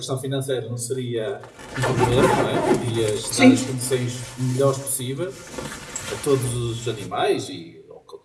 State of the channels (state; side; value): identical; both; correlation 1.00